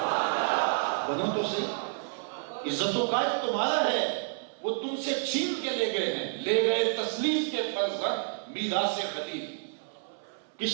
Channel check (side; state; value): left; silent; 58 dB below the other